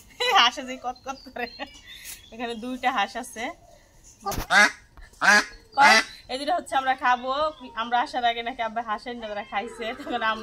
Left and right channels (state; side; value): identical; both; correlation 1.00